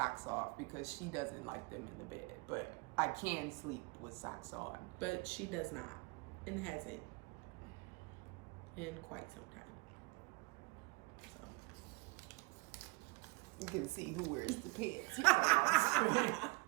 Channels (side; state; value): left; quieter; 27.0 dB